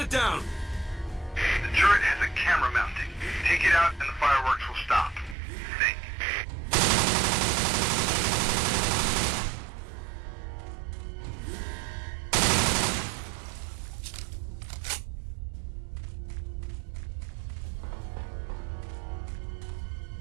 down. The turret has a camera mounting. Take it out and the fireworks will stop. Think.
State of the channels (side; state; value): left; drops out; at 5.4 s